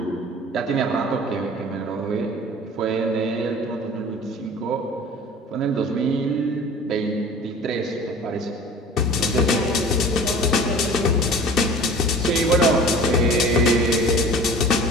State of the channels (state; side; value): normal; both; correlation 0.43